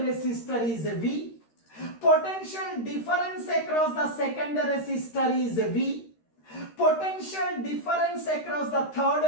is V, potential difference across the second resistor is V, potential difference across the third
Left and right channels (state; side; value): late; right; 13 ms